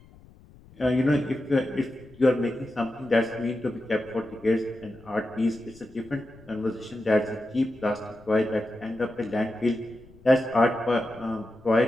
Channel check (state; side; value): noise; left; rumble, 24 dB below the sound